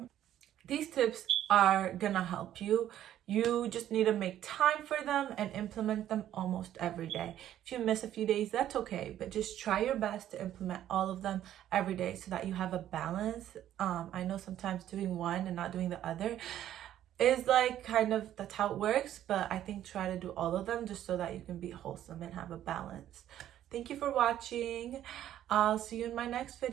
These tips are gonna help you. You just need to make time for them and implement them almost every day. If you miss a few days, that's okay, but just try your best to implement all of them every day so that you have a balance. I know sometimes doing one and not doing the other is like kind of, that's how it works, but I think try to do all of them just so that you can be wholesome and have a balance. Thank you for watching. I'll see you in my next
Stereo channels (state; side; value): quieter; left; 11.8 dB